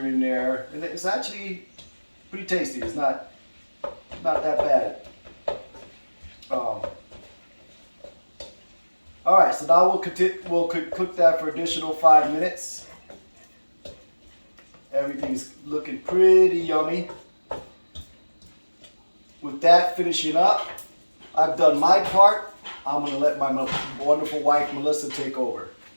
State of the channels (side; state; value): both; inverted; correlation -1.00